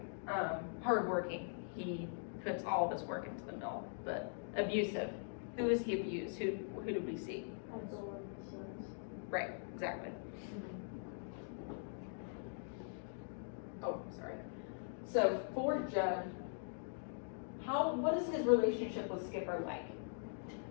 Hardworking. He puts all of his work into the mill. But abusive. Who is he abused? Who do we see? Ethel and the sons. Right, exactly. Oh, sorry. So for Judd, what is his relationship with Skipper like?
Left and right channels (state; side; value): silent; right; digital silence